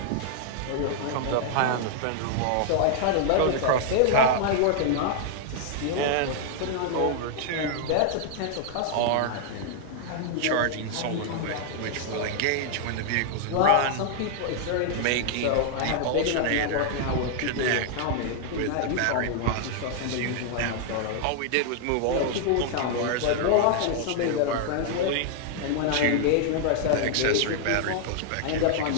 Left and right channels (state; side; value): different; both; correlation -0.01